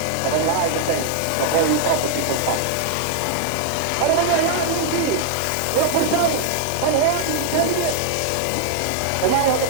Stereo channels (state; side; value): different; both; correlation 0.00